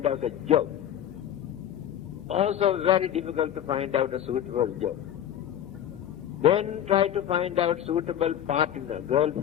out a job. Also very difficult to find out a suitable job. Then try to find out suitable partner,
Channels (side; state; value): right; quieter; 10.5 dB